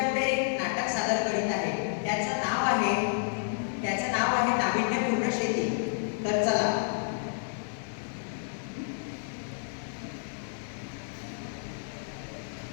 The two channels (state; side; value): silent; right; 58 dB below the other